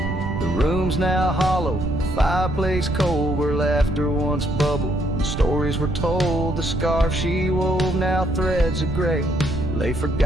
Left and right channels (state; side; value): noise; right; rumble, 5 dB below the sound